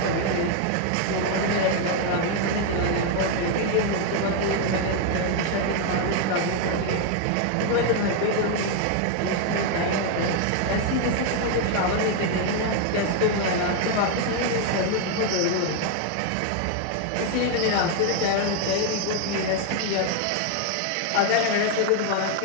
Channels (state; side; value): different; both; correlation 0.01